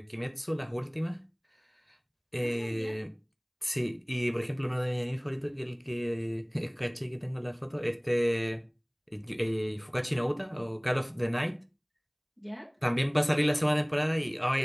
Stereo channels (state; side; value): identical; both; correlation 1.00